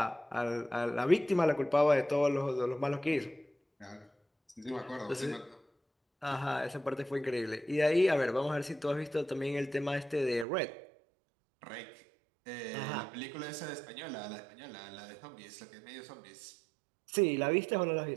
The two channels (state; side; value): drops out; left; at 10.5 s